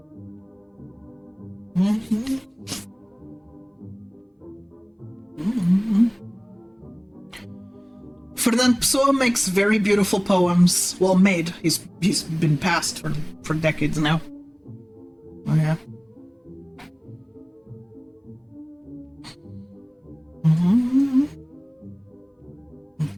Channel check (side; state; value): both; identical; correlation 1.00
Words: Fernand Pessoa makes very beautiful poems. Well, made. He's been passed for decades now. Oh yeah.